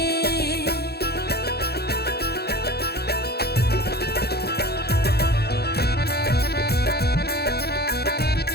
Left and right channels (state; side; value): late; right; 0.47 ms